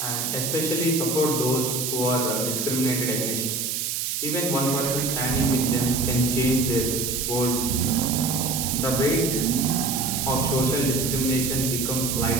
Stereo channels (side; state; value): right; noise; hiss, 1 dB below the sound